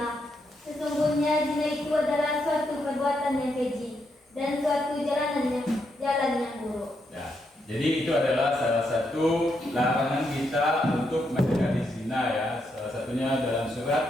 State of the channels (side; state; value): both; normal; correlation 0.80